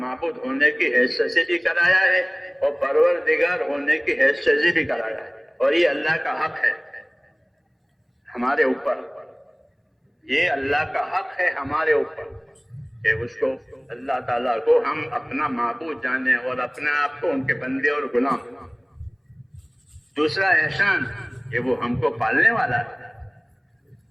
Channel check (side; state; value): both; identical; correlation 1.00